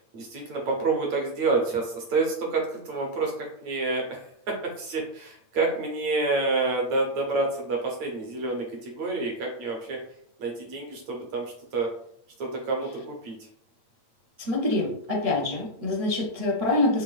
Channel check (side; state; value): left; late; 9.0 ms